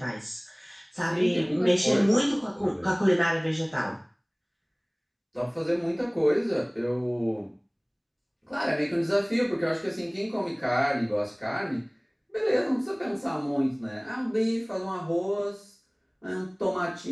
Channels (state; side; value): identical; both; correlation 1.00